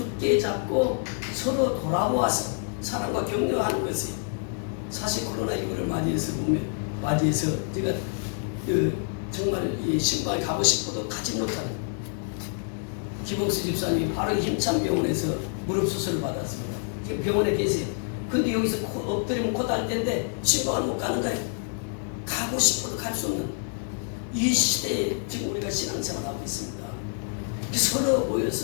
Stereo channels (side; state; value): right; silent; 60 dB below the other